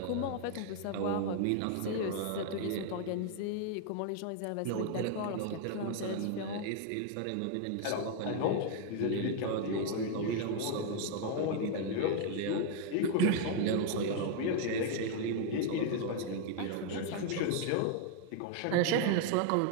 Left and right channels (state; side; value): different; both; correlation 0.00